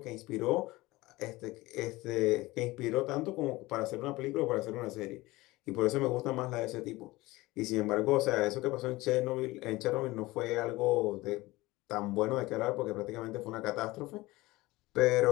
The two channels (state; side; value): quieter; right; 20.0 dB